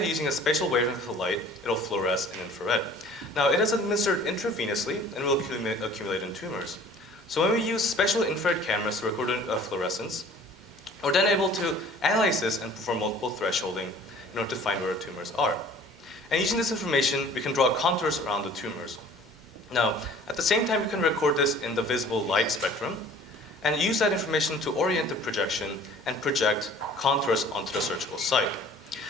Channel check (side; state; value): both; normal; correlation 0.49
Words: using a special wavelength of light, it'll fluoresce in infrared. Now, it is administered intravenously and will accumulate in tumors. So when we use special infrared cameras to record fluorescence, we're then able to analyze this and perform multiple thresholding in order to find where the tumors are. And using this information, we can draw contours around the tumors. Now, at the same time, we can record this in the visible light spectrum and use that information to orient the projection and project contours onto the surgical site.